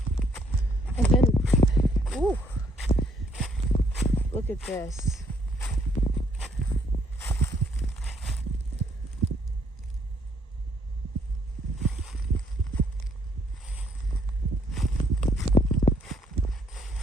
And then, ooh, look at this.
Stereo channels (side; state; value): both; normal; correlation 0.67